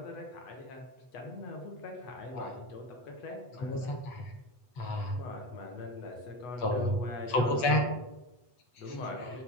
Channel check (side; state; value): right; late; 8.1 ms